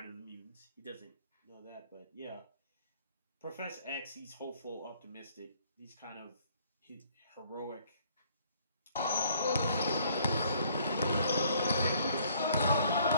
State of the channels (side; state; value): both; inverted; correlation -0.61